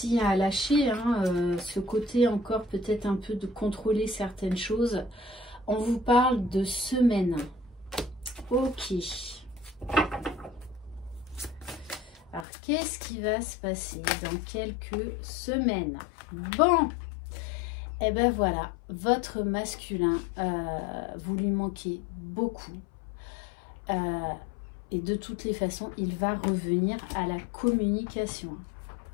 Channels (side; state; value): right; drops out; at 12.5 s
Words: à lâcher, hein, ce côté encore peut-être un peu de contrôler certaines choses. On vous parle de semaine. Ok. Alors qu'est-ce qui va se passer dans quelques semaines? Bon, et ben voilà, votre masculin, vous lui manquez beaucoup. Et de toutes les façons, il va revenir à la communication.